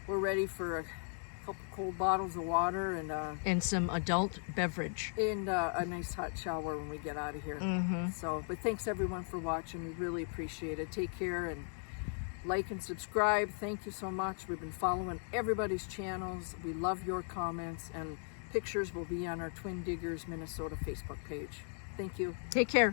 we're ready for a couple cold bottles of water And some adult beverage. and a nice hot shower when we get out of here. So, but thanks everyone for watching. We really appreciate it. Take care and like and subscribe. Thank you so much. We've been following everybody's channels. We love your comments, and pictures will be on our Twin Diggers Minnesota Facebook page. Thank you. Take care.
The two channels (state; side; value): silent; right; 53 dB below the other